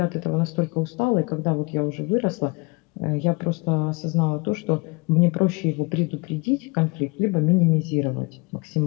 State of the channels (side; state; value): right; quieter; 28.5 dB